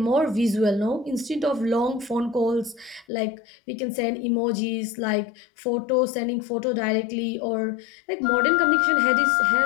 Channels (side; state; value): right; drops out; at 3.1 s